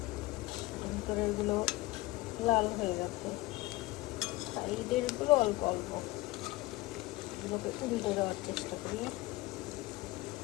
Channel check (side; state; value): right; quieter; 19.6 dB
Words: ভিতরের গুলো লাল হয়ে গেছে, সাইডের গুলো অল্প অল্প, এগুলোকে উল্টে দেওয়ার চেষ্টা করি।